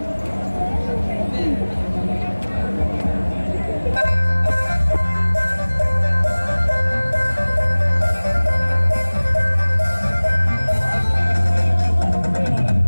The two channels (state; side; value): inverted; both; correlation -1.00